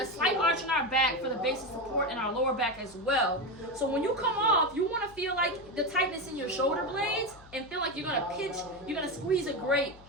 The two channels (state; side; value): noise; left; hum, 22 dB below the sound